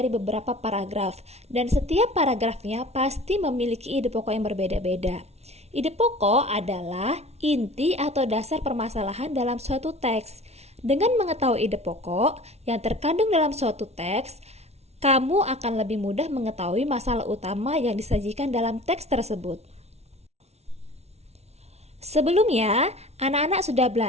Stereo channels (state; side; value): late; left; 0.31 ms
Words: beberapa paragraf, dan setiap paragrafnya pasti memiliki ide pokok yang berbeda-beda. Ide pokok adalah inti atau dasar permasalahan dalam suatu teks. Dengan mengetahui ide pokok yang terkandung dalam suatu teks, kamu akan lebih mudah mengetahui masalah utama yang disajikan dalam teks tersebut. Sebelumnya, anak-anak sudah